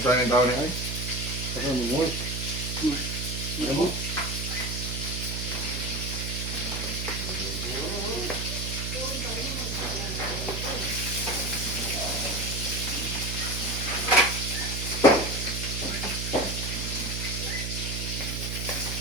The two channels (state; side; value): noise; right; hum, 3 dB below the sound